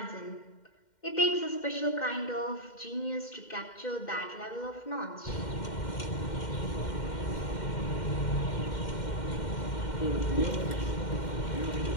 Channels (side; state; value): right; late; 2.1 ms